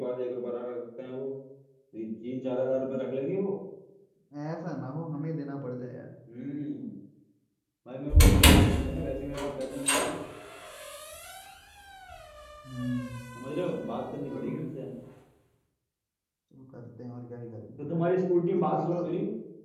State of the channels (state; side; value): identical; both; correlation 1.00